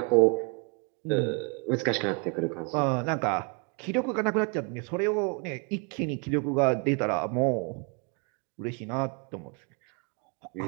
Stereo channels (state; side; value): quieter; left; 33.5 dB